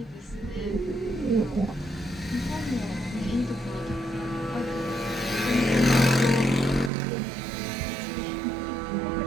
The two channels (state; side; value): drops out; left; at 6.9 s